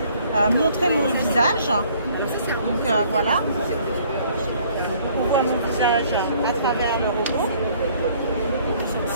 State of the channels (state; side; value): inverted; both; correlation -0.59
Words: montrer mon visage. Donc voilà, on voit mon visage à travers le robot.